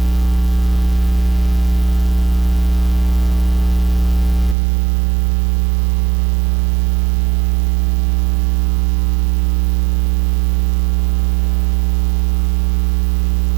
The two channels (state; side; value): drops out; left; at 4.5 s